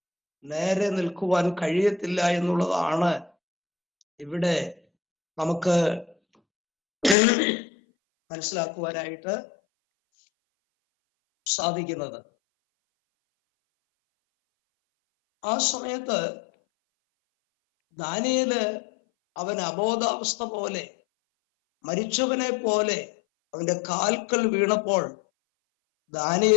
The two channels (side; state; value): right; drops out; at 7.2 s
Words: നേരെ നിൽക്കുവാൻ കഴിയത്തില്ല എന്നുള്ളതാണ് ഇവിടെ നമുക്ക് മനസ്സിലാക്കുവാനായിട്ട് സാധിക്കുന്നത്. ആ സമയത്ത് ദാനിയേല് അവൻ അബോധാവസ്ഥ പോലെ, മരിച്ചവനെ പോലെ അവന്റെ കാൽക്കൽ വീണപ്പോൾ